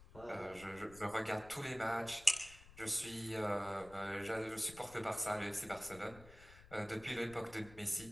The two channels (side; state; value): left; noise; rumble, 19 dB below the sound